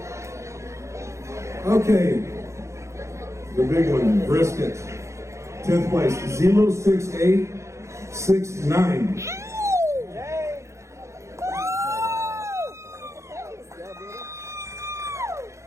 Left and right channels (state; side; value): late; left; 0.14 ms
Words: Okay, the big one, brisket. 10th place, 06869.